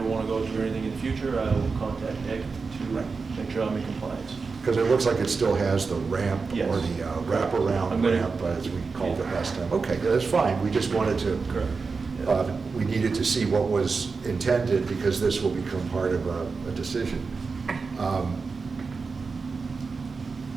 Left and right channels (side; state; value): left; quieter; 4.6 dB